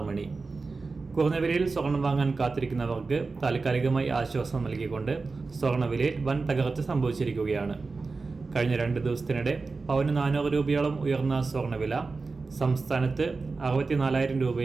മണി. കുറഞ്ഞ വിലയിൽ സ്വർണം വാങ്ങാൻ കാത്തിരിക്കുന്നവർക്ക് താൽക്കാലികമായി ആശ്വാസം നൽകിക്കൊണ്ട് സ്വർണ്ണവിലയിൽ വൻ തകർച്ച സംഭവിച്ചിരിക്കുകയാണ്. കഴിഞ്ഞ 2 ദിവസത്തിനിടെ പവന് 400 രൂപയോളം ഉയർന്ന സ്വർണ്ണവില സംസ്ഥാനത്ത് 64,000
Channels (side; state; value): left; quieter; 4.0 dB